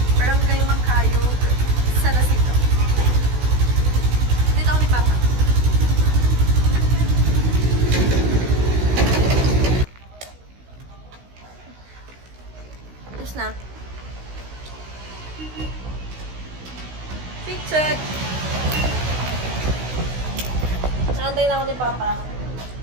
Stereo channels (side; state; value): left; late; 16 ms